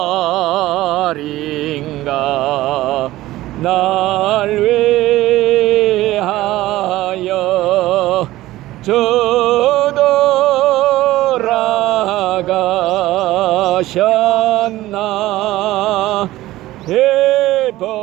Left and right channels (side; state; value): left; quieter; 16.4 dB